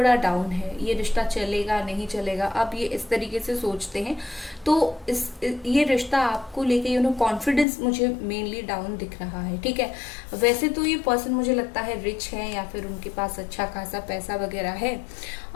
डाउन है। ये रिश्ता चलेगा नहीं चलेगा, अब ये इस तरीके से सोचते हैं। तो ये रिश्ता आपको लेके कॉन्फिडेंस मुझे मेनली डाउन दिख रहा है, ठीक है। वैसे तो ये पर्सन मुझे लगता है रिच है, या फिर उनके पास अच्छा खासा पैसा वगैरह है,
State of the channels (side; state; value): right; drops out; at 7.7 s